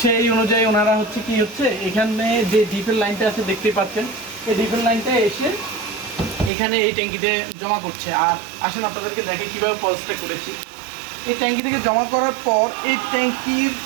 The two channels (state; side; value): drops out; left; at 6.5 s